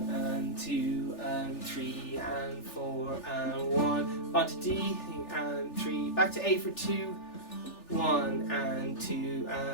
and 2 and 3 and 4 and 1. On to D and 3. Back to A for 2. 1 and 2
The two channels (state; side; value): late; right; 3.4 ms